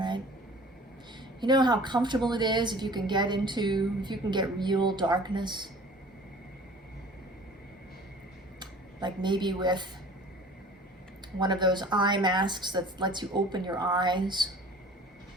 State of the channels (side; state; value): both; normal; correlation 0.46